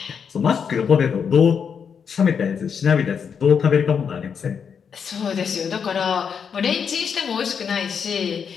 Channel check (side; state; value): right; quieter; 6.8 dB